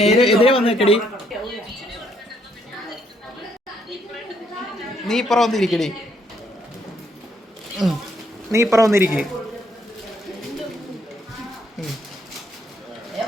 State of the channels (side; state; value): both; normal; correlation 0.70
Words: എതിരെ വന്നേക്കടി. നീ ഇപ്പുറം വന്നിരിക്കടി. നീ ഇപ്പുറം വന്നിരിക്കേ.